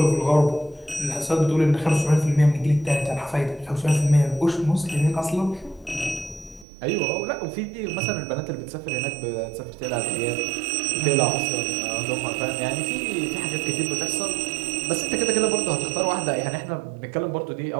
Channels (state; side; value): drops out; left; at 6.7 s